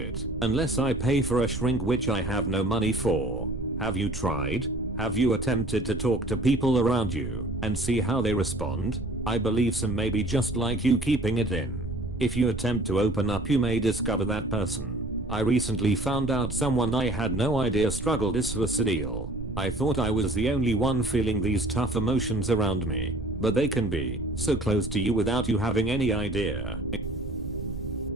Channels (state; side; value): noise; right; rumble, 9 dB below the sound